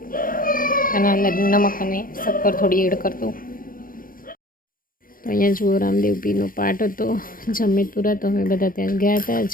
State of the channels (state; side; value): late; right; 0.41 ms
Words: આના અંદર નમક અને શક્કર થોડી એડ કરી દઉં. તો અહીંયા જુઓ રામદેવ પીરનો પાઠ હતો જમેતુરા. તો અમે બધા ત્યાં ગયા હતા,